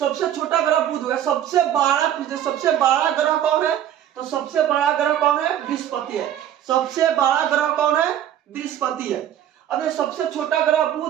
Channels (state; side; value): quieter; left; 10.9 dB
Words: छोटा ग्रह बुध है। सबसे बड़ा ग्रह कौन है? तो सबसे बड़ा ग्रह कौन है? बृहस्पति है। सबसे बड़ा ग्रह कौन है? बृहस्पति है। अब सबसे छोटा ग्रह